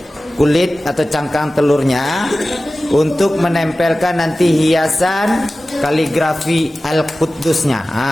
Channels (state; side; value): normal; both; correlation 0.96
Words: kulit atau cangkang telurnya untuk menempelkan nanti hiasan kaligrafi Al-Quddusnya.